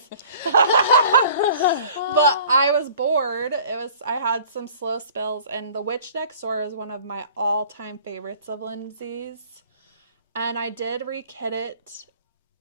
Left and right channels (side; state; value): both; inverted; correlation -0.49